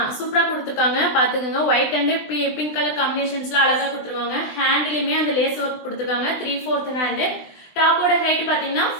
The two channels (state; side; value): late; right; 20 ms